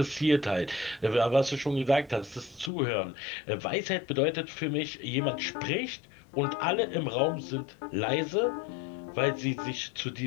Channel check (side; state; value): right; drops out; at 2.7 s